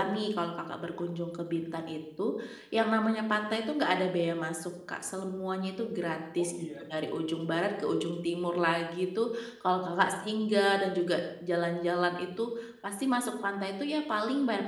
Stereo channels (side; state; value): both; identical; correlation 1.00